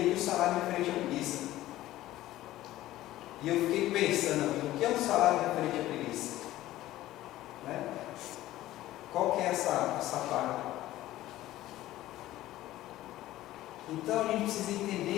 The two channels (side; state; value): right; quieter; 15.3 dB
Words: que o salário referente à preguiça. E eu fiquei pensando, o que é um salário referente à preguiça? Né? Qual que é essa parte? Então a gente precisa